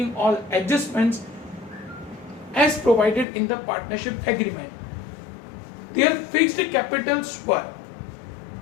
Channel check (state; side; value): drops out; right; at 3.2 s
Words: all adjustments as provided in the partnership agreement. Their fixed capitals were,